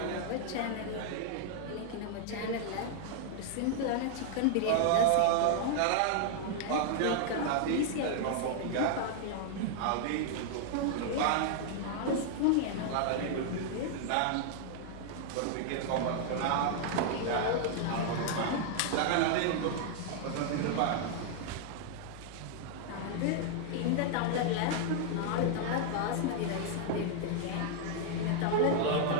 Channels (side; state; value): both; different; correlation 0.00